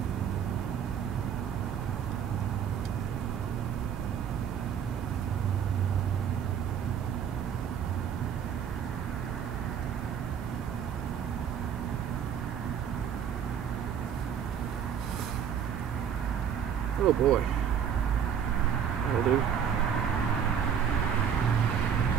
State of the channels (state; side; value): quieter; left; 8.1 dB